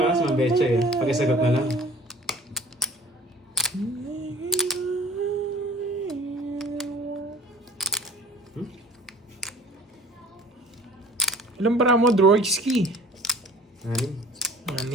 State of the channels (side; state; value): both; normal; correlation 0.47